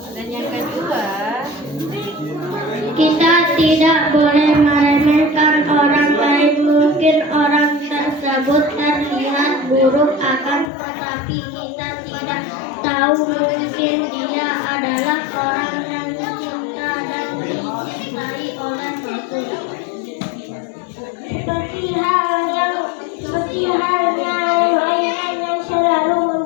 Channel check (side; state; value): right; drops out; at 10.7 s